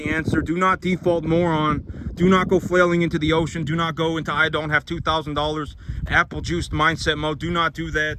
answer. Do not default moron. Do not go flailing into the ocean. Do not go into I don't have $2,000 apple juice mindset mode. Do not do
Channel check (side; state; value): both; identical; correlation 1.00